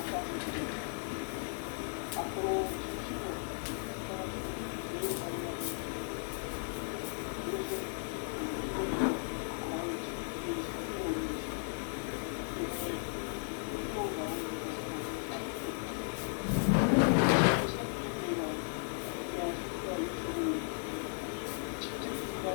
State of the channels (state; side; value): silent; right; 54 dB below the other